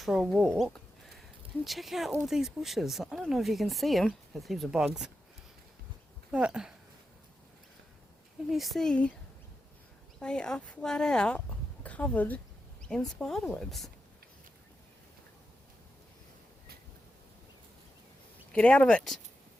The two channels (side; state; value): both; normal; correlation 0.89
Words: a walk. And check out all these bushes. I don't know if you can see them. There's heaps of bugs. But can you see they are flat out covered in spider webs. Get out of it.